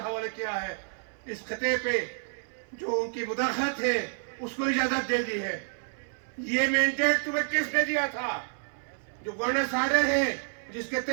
حوالے کیا ہے. اس خطے پہ جو ان کی مداخلت ہے اس کو اجازت دے دی ہے. یہ مینڈیٹ تمہیں کس نے دیا تھا؟ جو گورننس آرڈر ہے جس کے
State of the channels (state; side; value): silent; left; 57 dB below the other